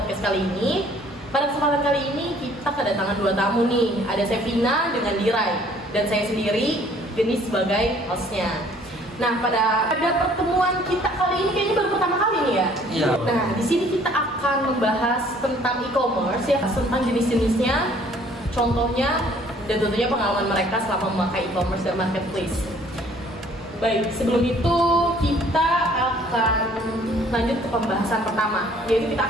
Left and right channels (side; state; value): both; normal; correlation 0.58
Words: kali ini. Pada kesempatan kali ini kita kedatangan dua tamu nih. Ada Sevina dengan Diray dan saya sendiri, Geni sebagai hostnya. Nah, pada pertemuan kita kali ini kayaknya baru pertama kali nih ya. Iya. Nah, di sini kita akan membahas tentang e-commerce ya, tentang jenis-jenisnya, contohnya, dan tentunya pengalaman mereka selama memakai e-commerce dan marketplace. Baik, sebelum itu kita akan lanjut ke pembahasan pertama, yaitu kita